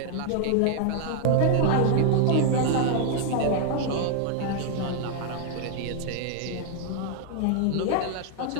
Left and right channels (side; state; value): both; different; correlation 0.00